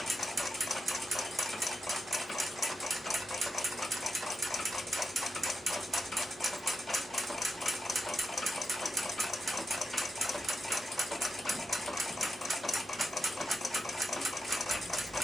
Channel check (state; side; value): normal; both; correlation 0.86